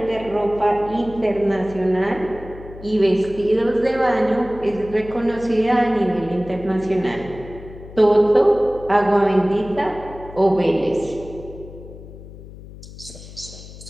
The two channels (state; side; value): noise; left; hum, 16 dB below the sound